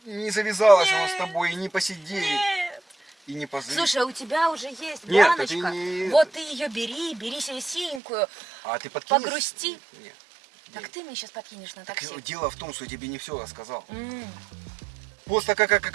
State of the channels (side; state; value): left; drops out; at 8.0 s